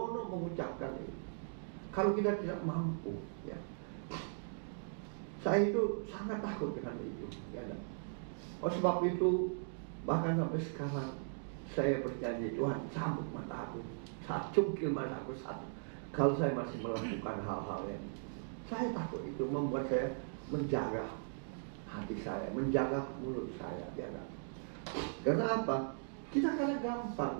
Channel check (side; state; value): left; silent; digital silence